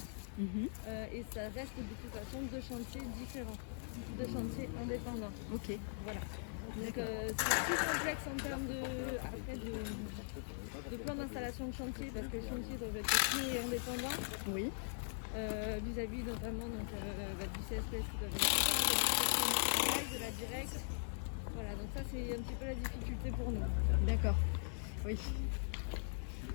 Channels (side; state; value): right; silent; 51 dB below the other